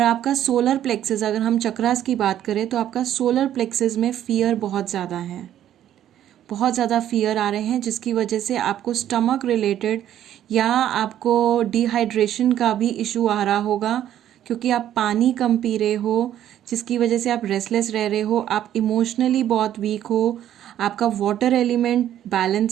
आपका सोलर प्लेक्सेस, अगर हम चक्रास की बात करें तो आपका सोलर प्लेक्सेस में फियर बहुत ज़्यादा है, बहुत ज़्यादा फियर आ रहे हैं, जिसकी वजह से आपको स्टमक रिलेटेड या आपको डिहाइड्रेशन का भी इशू आ रहा होगा, क्योंकि आप पानी कम पी रहे हो, जिसकी वजह से आप रेस्टलेस रह रहे हो, आप इमोशनली बहुत वीक हो, आपका वाटर एलिमेंट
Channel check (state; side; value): quieter; left; 11.3 dB